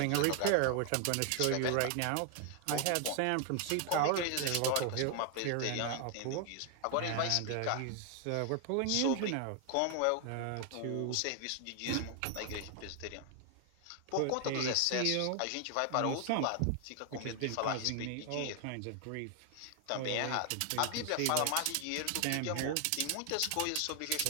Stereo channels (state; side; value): different; both; correlation 0.00